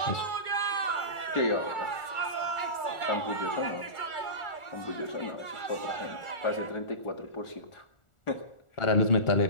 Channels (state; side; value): late; right; 1.4 ms